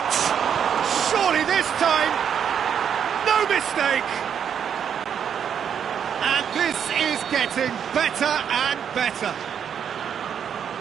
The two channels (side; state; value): left; quieter; 8.1 dB